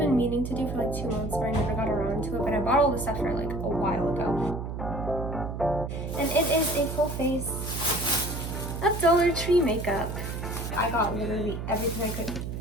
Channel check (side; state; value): right; noise; hum, 6 dB below the sound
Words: meaning to do for like 2 months, but I never got around to it. But I bought all the stuff for like a while ago. And it is a full face of Dollar Tree makeup. I got literally everything I